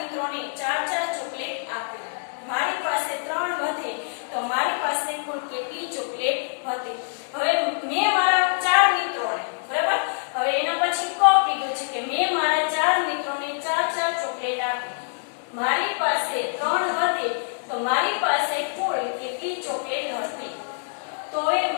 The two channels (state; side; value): silent; right; 61 dB below the other